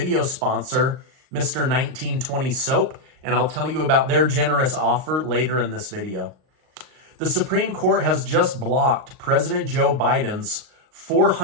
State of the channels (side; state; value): left; late; 38 ms